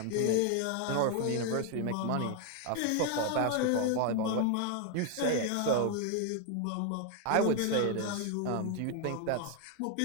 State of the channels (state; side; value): different; both; correlation 0.01